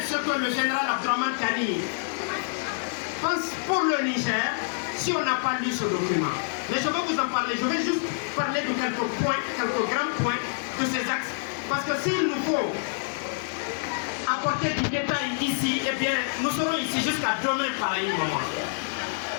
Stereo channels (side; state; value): right; silent; 60 dB below the other